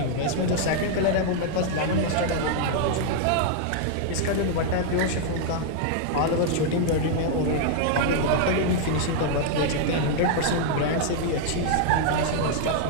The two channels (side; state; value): both; different; correlation -0.01